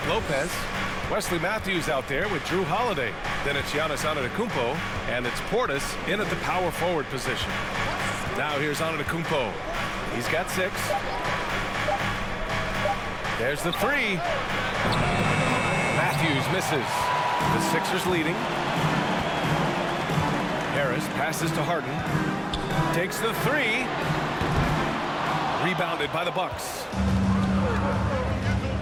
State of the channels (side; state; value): both; identical; correlation 1.00